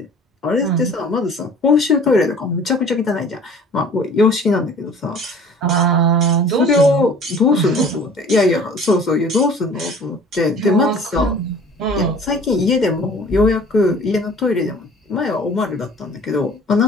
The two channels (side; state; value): both; normal; correlation 0.48